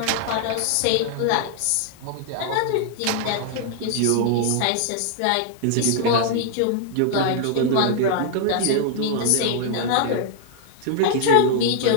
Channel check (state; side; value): different; both; correlation 0.00